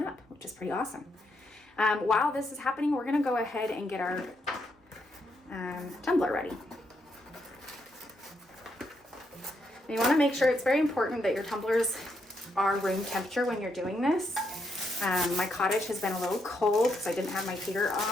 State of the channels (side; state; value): both; normal; correlation 0.78